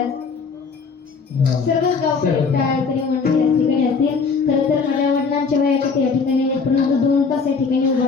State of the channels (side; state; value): right; quieter; 5.1 dB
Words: सर्वच गावकरी टाळकरी मंडळी या ठिकाणी असतील. खरं तर माझ्या वडिलांच्या वयाच्या या ठिकाणी आहेत परंतु 2 तास या ठिकाणी उभा